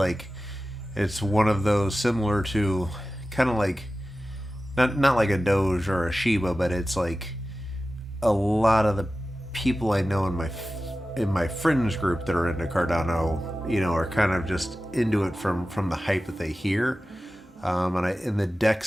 it's one of those similar to kind of like not like a Doge or a Shiba, but it's like a lot of the people I know in my friends group that are into Cardano, are kind of just into it from the hype that they hear. And the deck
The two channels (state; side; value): normal; both; correlation 0.95